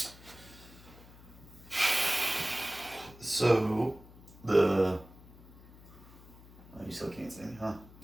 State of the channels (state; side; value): noise; left; hum, 20 dB below the sound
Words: So the you still can't see me, huh?